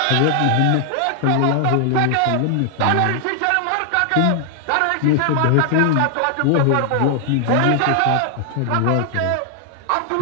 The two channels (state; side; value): different; both; correlation 0.00